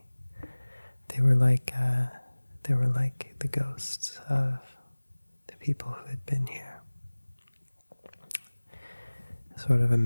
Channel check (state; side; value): inverted; both; correlation -1.00